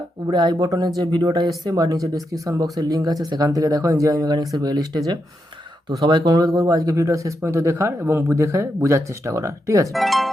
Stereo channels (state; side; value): normal; both; correlation 0.84